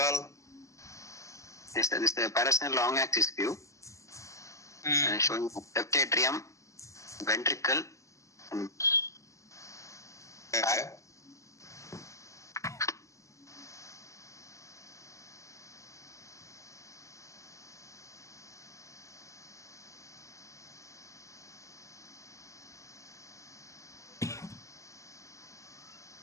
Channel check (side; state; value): right; late; 0.15 ms